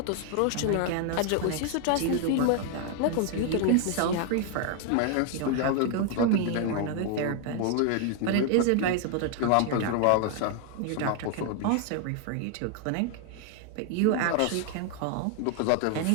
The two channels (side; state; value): both; different; correlation 0.00